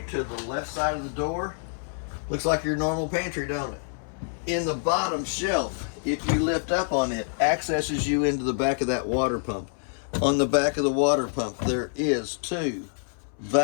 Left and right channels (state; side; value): silent; right; 60 dB below the other